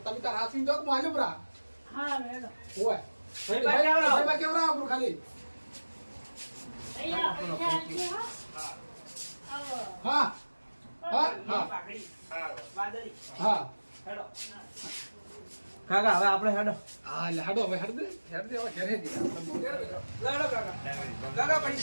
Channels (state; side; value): inverted; both; correlation -1.00